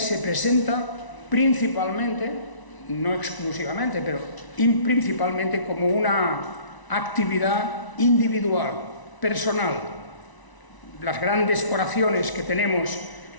presenta principalmente, no exclusivamente, pero principalmente como una actividad individual, personal. Las grandes oraciones que tenemos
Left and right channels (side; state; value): right; late; 1.0 ms